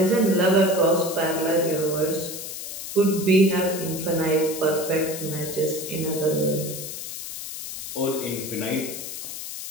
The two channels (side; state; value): left; noise; hiss, 8 dB below the sound